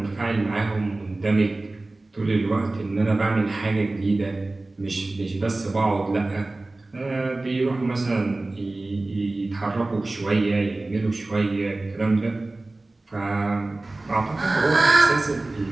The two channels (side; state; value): left; quieter; 3.0 dB